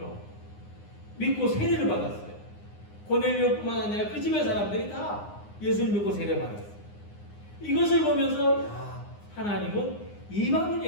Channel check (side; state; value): right; late; 9.7 ms